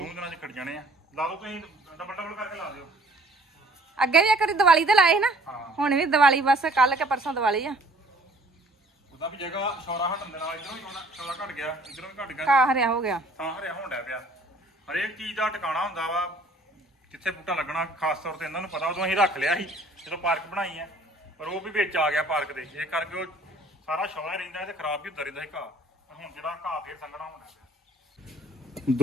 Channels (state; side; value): normal; both; correlation 0.55